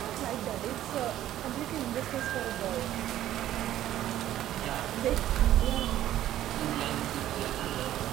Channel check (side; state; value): left; quieter; 12.8 dB